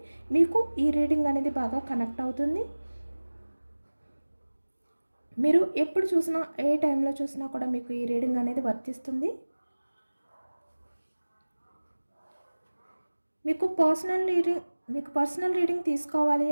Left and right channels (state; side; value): inverted; both; correlation -1.00